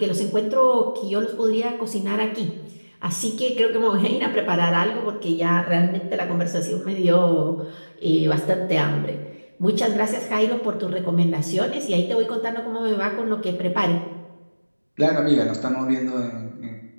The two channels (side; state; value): both; inverted; correlation -1.00